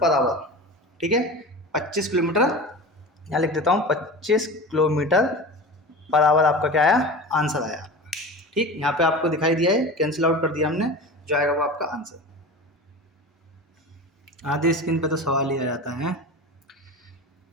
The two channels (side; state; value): both; normal; correlation 0.32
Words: आवर। ठीक है, 25 किलोमीटर, यहाँ लिख देता हूँ 25 किलोमीटर पर आवर आपका क्या आया, आंसर आया। ठीक, यहाँ पे आपको दिखाई दिया है, कैंसिल आउट कर दिया हमने, जो आएगा वो आपका आंसर। आधे स्क्रीन पे तो सवाल ही आ जाता है,